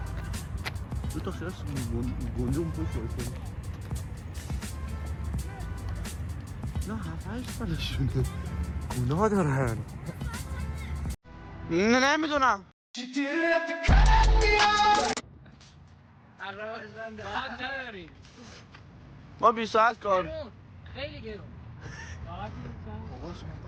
دو تا خیلی گندم پوش باشه نه 7-8 سالشونه گناه دارن نمیدونم ما 20 ساعت کار خیلی گرون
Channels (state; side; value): identical; both; correlation 1.00